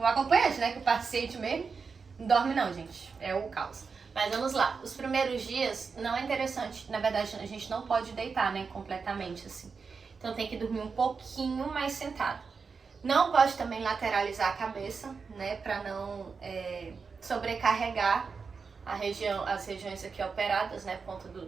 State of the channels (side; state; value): left; quieter; 5.2 dB